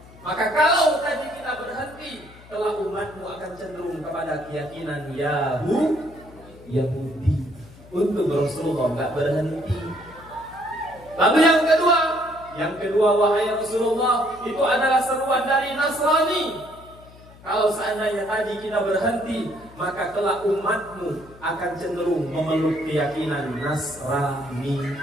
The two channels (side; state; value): left; noise; hum, 22 dB below the sound